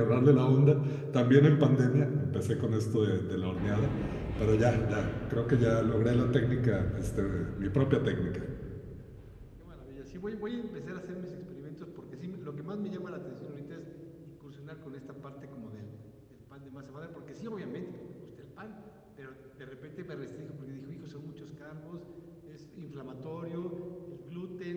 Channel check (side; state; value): both; identical; correlation 1.00